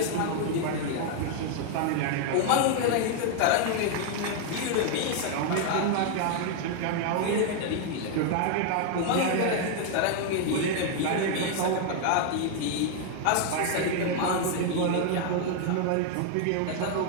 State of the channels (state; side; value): different; both; correlation 0.00